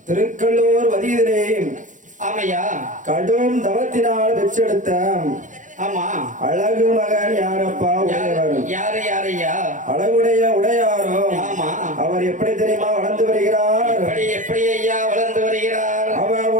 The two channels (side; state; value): left; late; 0.37 ms